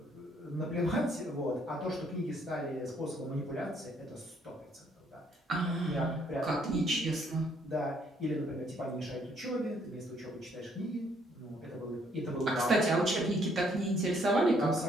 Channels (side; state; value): both; normal; correlation 0.67